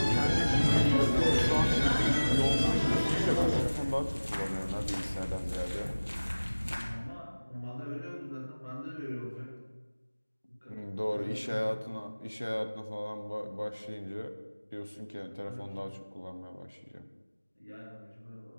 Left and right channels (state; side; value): inverted; both; correlation -1.00